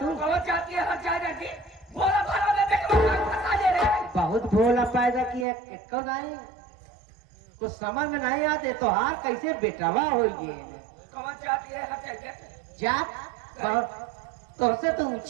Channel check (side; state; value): left; drops out; at 5.5 s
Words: कहो जाती है हर जगह की बोला भाड़ा में देख फंसा ले रहे हैं। बहुत भोला पैदा किया कब नहीं कुछ समझ में नहीं आते तो हार कैसे बेटावा हो गए। कहो जाती है हर जगह जात तो से तो